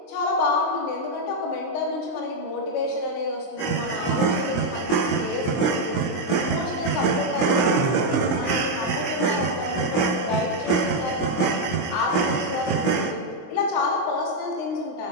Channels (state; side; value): late; right; 23 ms